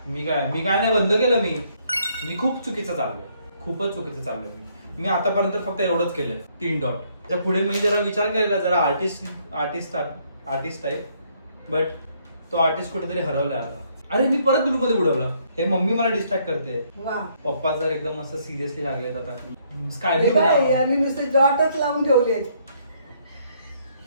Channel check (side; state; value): both; inverted; correlation -0.68